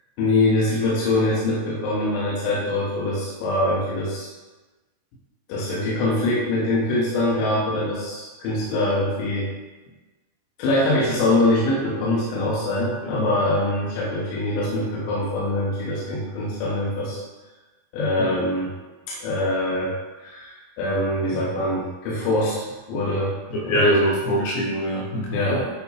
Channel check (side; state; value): right; late; 22 ms